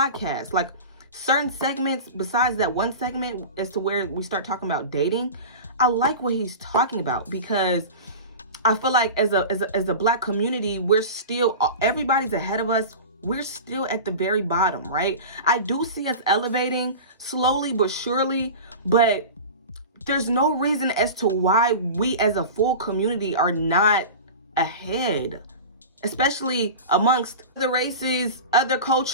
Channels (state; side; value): inverted; both; correlation -0.31